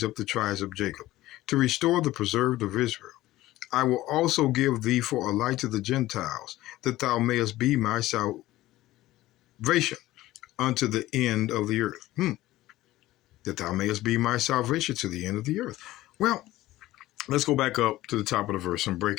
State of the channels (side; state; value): right; quieter; 16.4 dB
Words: up the tribes of Jacob, to restore the preserved of Israel. I will also give thee for a light to the Gentiles, that thou mayest be my salvation unto the end of the earth." That thou mayest be my salvation to the end of the earth. Well, let's go back up to the top of the verse and